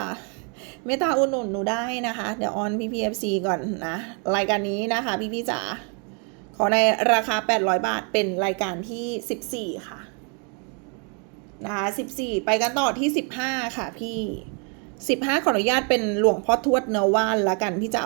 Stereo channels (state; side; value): quieter; left; 37.5 dB